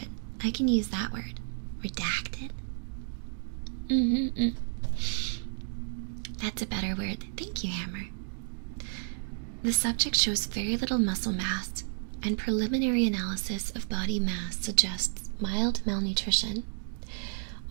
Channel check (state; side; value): silent; left; digital silence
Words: I can use that word. Redacted. That's a better word. Thank you, Hammer. The subject shows very little muscle mass, and preliminary analysis of body mass suggests mild malnutrition.